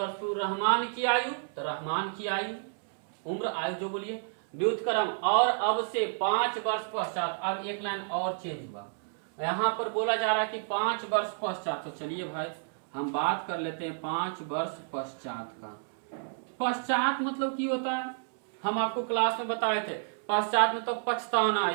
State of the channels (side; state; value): left; silent; 58 dB below the other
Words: पूर्व रहमान की आयु, तो रहमान की आयु, उम्र, आयु जो बोलिए, व्युत्क्रम और अब से 5 वर्ष पश्चात। अब एक लाइन और चेंज हुआ, यहाँ पर बोला जा रहा है कि 5 वर्ष पश्चात। तो चलिए भाई हम बात कर लेते हैं 5 वर्ष पश्चात का। पश्चात मतलब की होता है, हम आपको क्लास में बताए थे। पश्चात में तो पछताना,